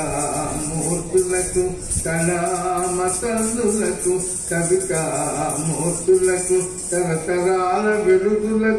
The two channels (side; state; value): both; identical; correlation 1.00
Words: కళామతల్లులకు కవితామూర్తులకు తరతరాల